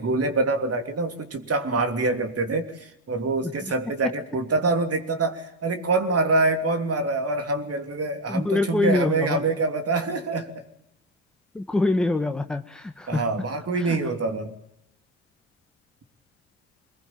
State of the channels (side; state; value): both; normal; correlation 0.07